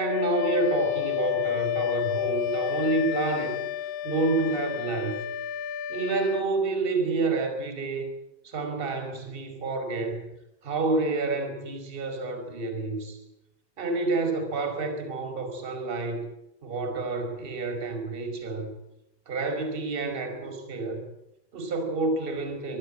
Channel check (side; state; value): left; late; 2.7 ms